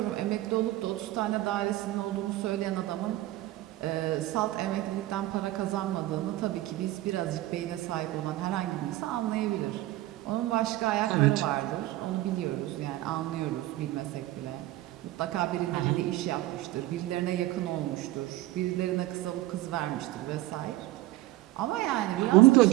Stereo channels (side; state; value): left; quieter; 16.7 dB